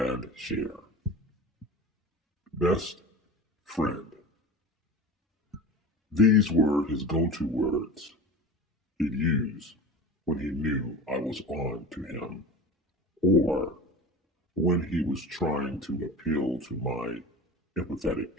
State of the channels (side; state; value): both; normal; correlation 0.33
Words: share. Best friend. These were his go-to words he'd use when he knew I was on to him, or when he was trying to appeal to my empathetic